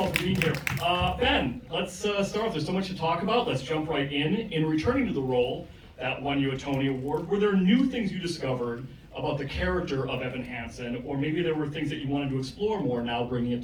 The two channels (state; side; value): identical; both; correlation 1.00